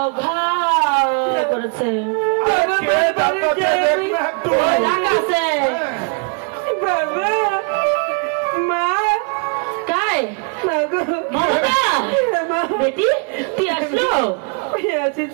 ঘাও করেছে बेटी ती আসলো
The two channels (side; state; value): left; quieter; 36.7 dB